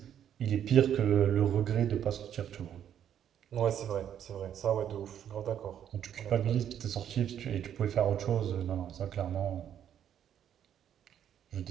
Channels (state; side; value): quieter; left; 9.7 dB